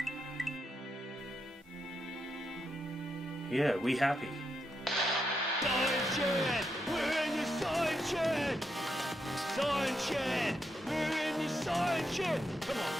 Yeah, we happy. Science Shed! We're in the Science Shed! Science Shed! We're in the Science Shed! Come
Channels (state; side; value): normal; both; correlation 0.83